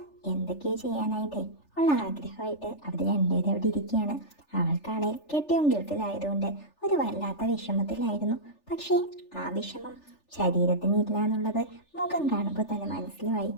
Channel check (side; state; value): right; late; 3.4 ms